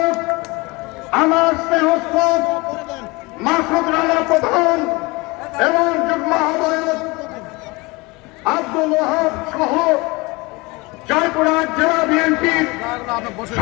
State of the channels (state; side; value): quieter; right; 24.6 dB